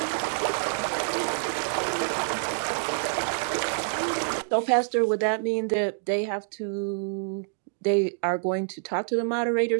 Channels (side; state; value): left; silent; digital silence